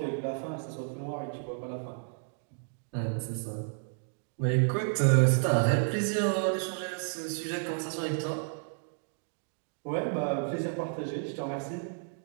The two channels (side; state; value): left; silent; digital silence